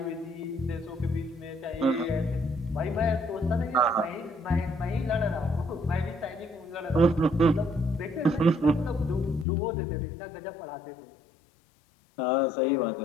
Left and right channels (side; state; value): right; drops out; at 9.5 s